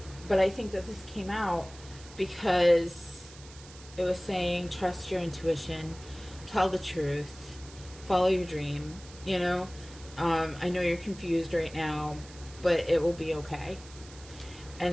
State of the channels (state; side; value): noise; right; hiss, 19 dB below the sound